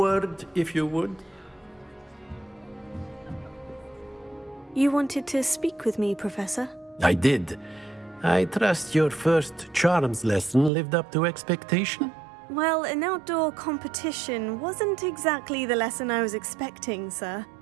if you would. You wanted to speak with me, Professor? I did. I trust your first charms lesson lived up to expectation? Well, an outdoor competition wasn't exactly the lesson I was expecting, sir.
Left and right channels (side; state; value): left; drops out; at 10.7 s